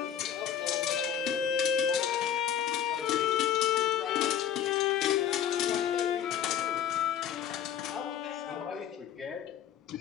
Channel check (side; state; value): right; quieter; 9.5 dB